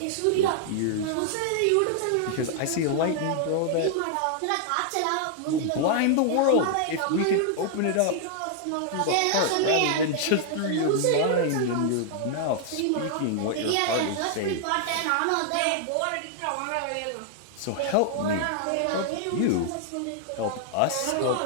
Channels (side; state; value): both; different; correlation 0.00